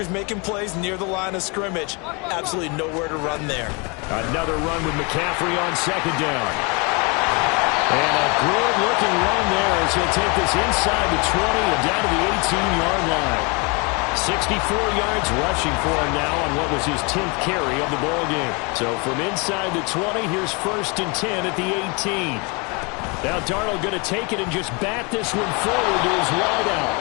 making plays near the line of scrimmage. Absolutely nowhere to run there. Another run with McCaffrey on second down. And a good-looking run there as he'll take this inside the 20 and down to the 18-yard line. 64 yards rushing for him now on what was his 10th carry of the ball game. So from inside the 20, here's 1st and 10 at the 18. Now Darnold going to take it and just bat this one forward to his wideout.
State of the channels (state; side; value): quieter; right; 30.8 dB